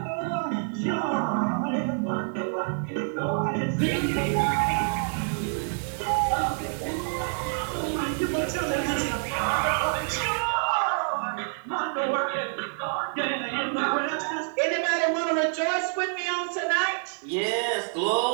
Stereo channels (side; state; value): left; silent; 60 dB below the other